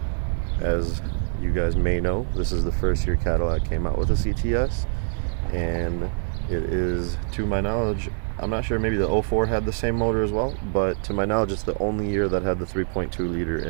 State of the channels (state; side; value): silent; left; digital silence